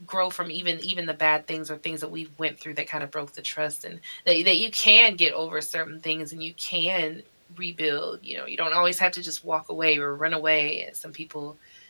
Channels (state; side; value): inverted; both; correlation -1.00